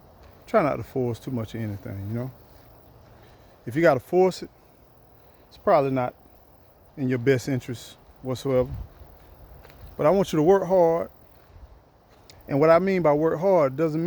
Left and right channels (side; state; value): both; identical; correlation 1.00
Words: Try not to force too much of anything. If you got to force it, it's probably not in your best interest whatsoever. But I want you to work hard. And what I mean by work hard doesn't